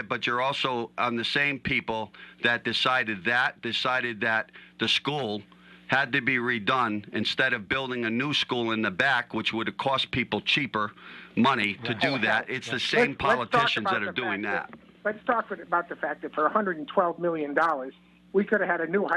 but you're also on the same people that decided that the school had to be redone instead of building a new school in the back, which would have cost people cheaper money to do that. It's the same Let's talk politicians about that are the doing fact that. Let's talk about the fact that for $112 million, we could have had a new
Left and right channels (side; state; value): both; identical; correlation 1.00